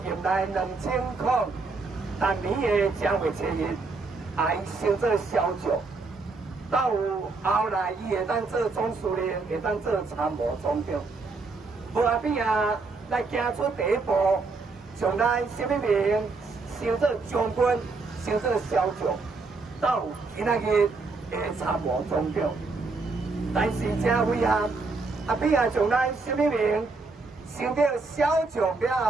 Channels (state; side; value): quieter; left; 3.9 dB